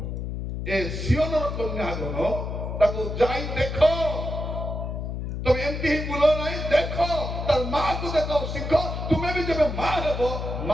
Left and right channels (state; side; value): noise; left; hum, 4 dB below the sound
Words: ଏ ସିଓନର କନ୍ୟାଗଣ ତାକୁ ଯାଇ ଦେଖ। ତମେ ଏମିତି ହିଁ ବୁଲ ନାହିଁ, ଦେଖ ତାର ମାକୁ ଦେଖ, ଶିଖ। ତୁମେ ବି ଯେବେ ମା ହେବ